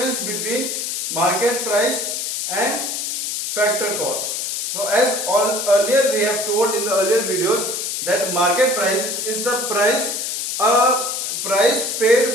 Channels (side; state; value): left; noise; hiss, 3 dB below the sound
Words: between market price and factor cost. So as earlier we have told in the earlier videos that market price is the price paid